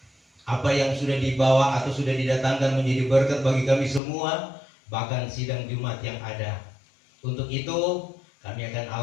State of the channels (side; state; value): right; drops out; at 4.0 s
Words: Apa yang sudah dibawa atau sudah didatangkan menjadi berkat bagi kami semua, bahkan sidang Jumat yang ada. Untuk itu kami akan